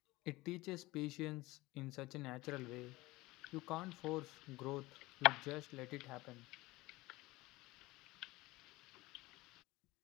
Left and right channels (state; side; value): quieter; right; 20.2 dB